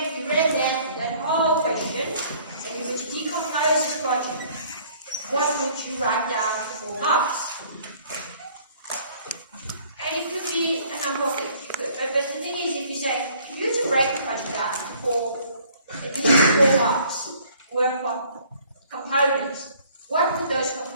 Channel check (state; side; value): inverted; both; correlation -0.58